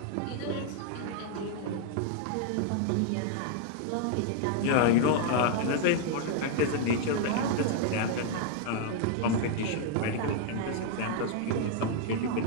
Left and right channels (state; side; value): different; both; correlation 0.00